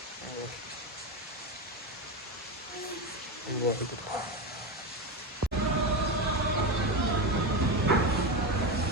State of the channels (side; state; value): both; normal; correlation 0.16